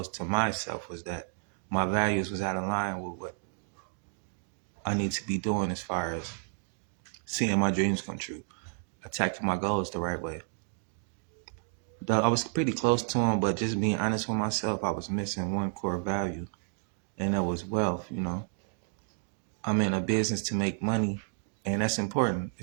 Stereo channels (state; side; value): silent; left; 57 dB below the other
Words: to myself was that my values was out of line with what I need to be doing as far as seeing my dreams come true, attacking my goals the right way. I was pretty close to them, but just being honest with myself, I was missing one core value, and that was wealth. I'm in a business to make money, and that's important.